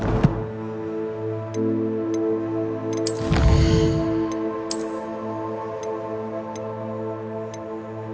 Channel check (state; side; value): identical; both; correlation 1.00